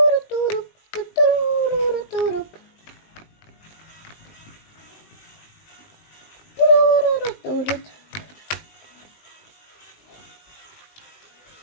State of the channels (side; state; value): right; late; 19 ms